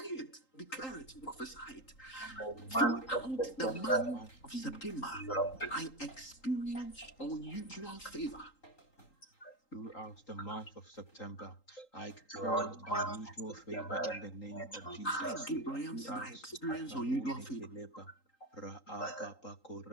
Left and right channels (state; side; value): late; right; 3.8 ms